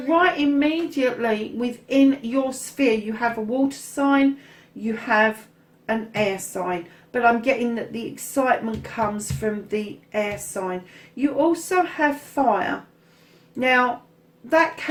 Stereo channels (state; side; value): identical; both; correlation 1.00